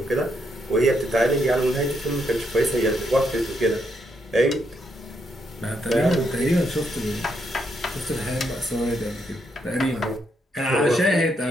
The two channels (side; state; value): both; normal; correlation 0.77